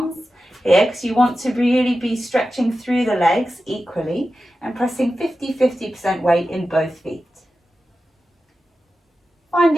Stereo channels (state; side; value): normal; both; correlation 0.92